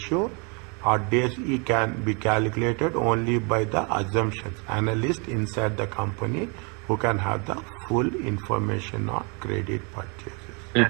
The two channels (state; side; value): quieter; left; 33.3 dB